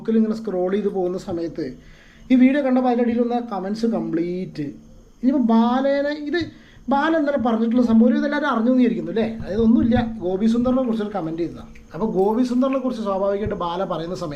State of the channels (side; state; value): both; identical; correlation 1.00